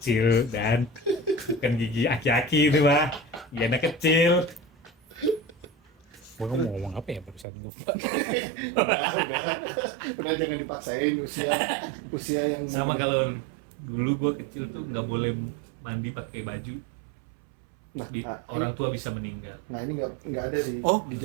dan bukan gigi aki-aki itu mah. Gigi anak kecil. Gua mau ngomong apa ya barusan lupa. Udah jangan dipaksain usia yang Sama kalau dulu gua kecil tuh nggak boleh mandi pakai baju. nah, Orang tua bisa meninggal. nah ini nggak ada sih. Oh, di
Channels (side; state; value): left; drops out; at 7.5 s